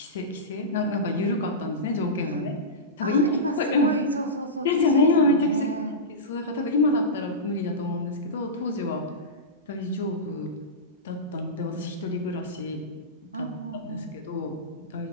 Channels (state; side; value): normal; both; correlation -0.15